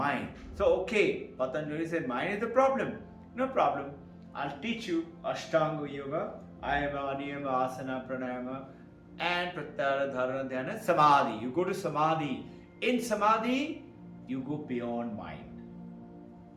So okay, Patanjali said mind is the problem. No problem. I'll teach you Ashtanga Yoga, Ayama, Niyama, Asana, Pranayama, and Pratyahara, Dharana, Dhyana, Samadhi. You go to Samadhi. In Samadhi, you go beyond mind.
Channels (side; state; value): both; identical; correlation 1.00